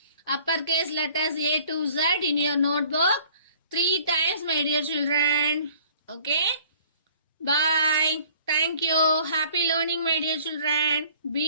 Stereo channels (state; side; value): inverted; both; correlation -0.53